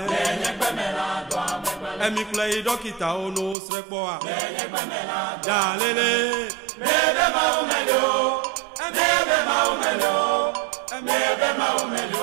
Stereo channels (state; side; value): drops out; left; at 3.6 s